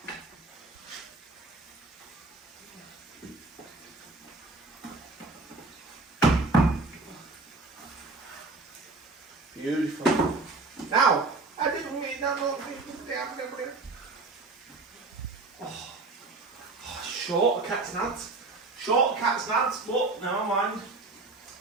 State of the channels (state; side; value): quieter; left; 3.5 dB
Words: Beautiful. Now, I didn't mean that little thing. Short cat's nads. Short cat's nads, but never mind.